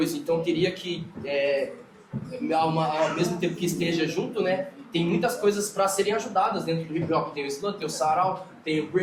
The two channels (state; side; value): identical; both; correlation 1.00